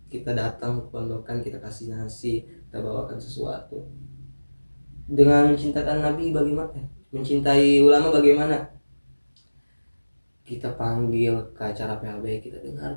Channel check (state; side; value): inverted; both; correlation -1.00